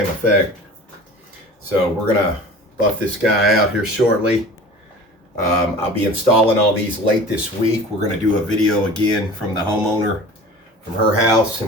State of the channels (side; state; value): both; normal; correlation 0.40